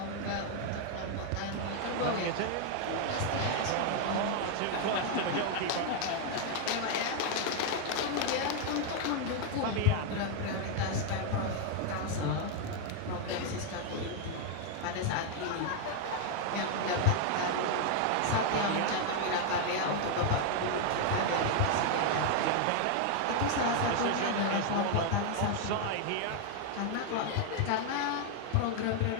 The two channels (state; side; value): different; both; correlation 0.00